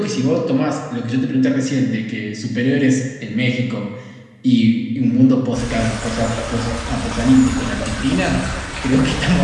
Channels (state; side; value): identical; both; correlation 1.00